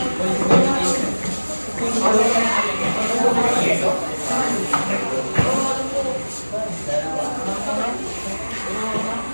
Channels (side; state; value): both; inverted; correlation -1.00